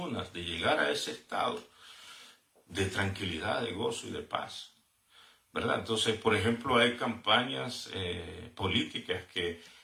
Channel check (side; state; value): both; identical; correlation 1.00